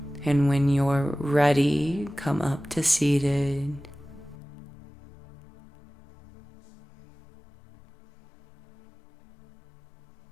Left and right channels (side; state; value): right; drops out; at 4.4 s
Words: And when you're ready, come up to seated.